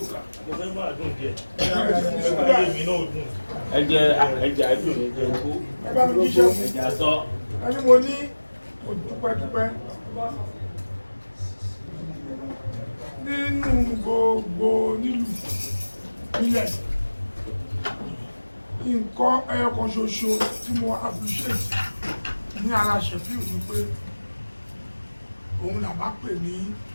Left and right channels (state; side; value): inverted; both; correlation -1.00